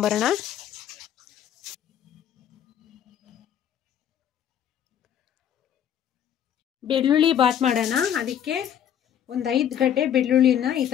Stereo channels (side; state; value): right; quieter; 9.6 dB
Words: ಬೆಳ್ಳುಳ್ಳಿ ಬಾತ್ ಮಾಡೋಣ. ಅದಕ್ಕೆ ಒಂದು 5 ಗಡ್ಡೆ ಬೆಳ್ಳುಳ್ಳಿನ ಈ